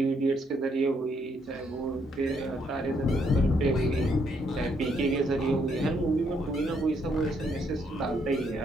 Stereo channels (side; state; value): both; normal; correlation 0.73